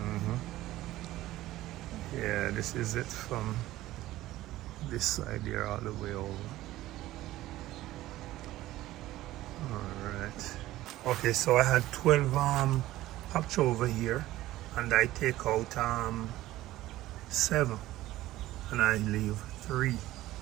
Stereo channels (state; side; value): quieter; left; 15.8 dB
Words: Yeah, this is it from this side here all the way over. Alright. Okay, so I had 12 hopch over here, and I take out 7 and I leave 3